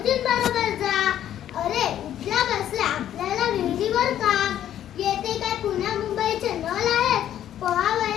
जा. अरे उठल्या बसल्या आपल्याला विहिरीवर काम येते काय? पुण्या मुंबईचे नळ आहेत,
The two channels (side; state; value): right; quieter; 11.2 dB